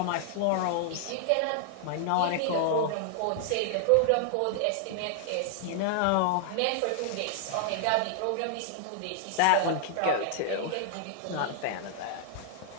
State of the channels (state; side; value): different; both; correlation -0.01